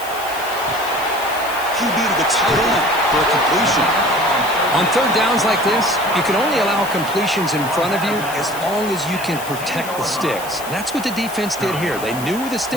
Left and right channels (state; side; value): noise; left; hiss, 13 dB below the sound